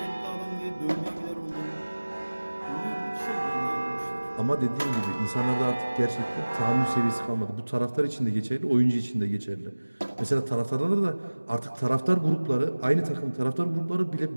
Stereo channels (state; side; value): inverted; both; correlation -1.00